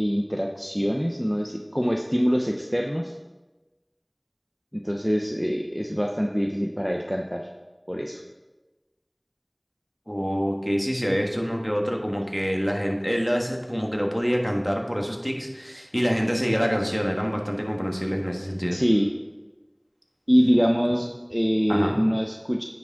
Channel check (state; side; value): identical; both; correlation 1.00